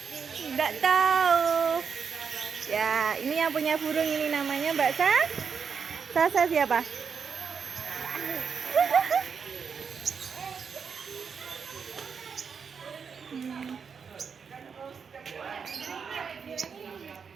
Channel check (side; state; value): left; quieter; 6.2 dB